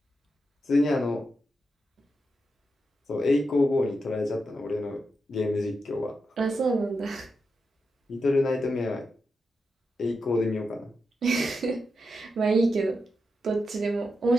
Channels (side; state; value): both; normal; correlation 0.87